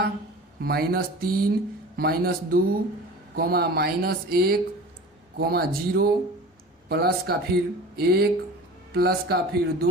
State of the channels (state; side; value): normal; both; correlation 0.38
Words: -3, -2, -1, -0, प्लस का फिर 1, प्लस का फिर